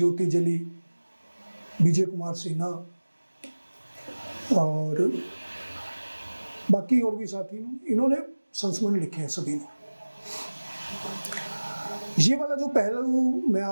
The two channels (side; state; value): both; inverted; correlation -1.00